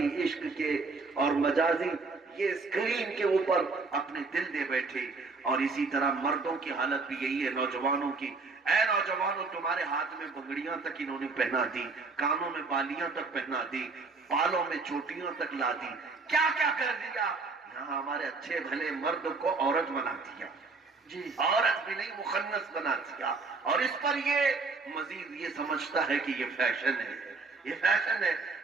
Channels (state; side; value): quieter; left; 4.0 dB